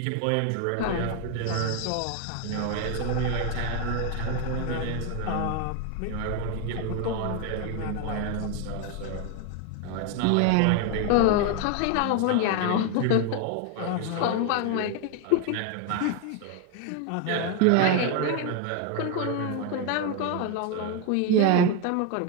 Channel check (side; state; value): both; different; correlation 0.01